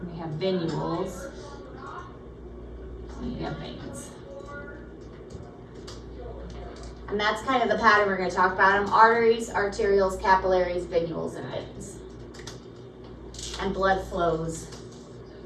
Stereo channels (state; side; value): identical; both; correlation 1.00